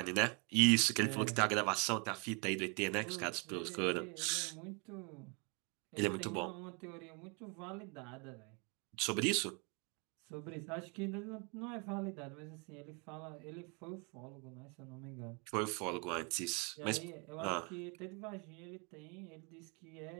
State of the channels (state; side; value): quieter; left; 33.0 dB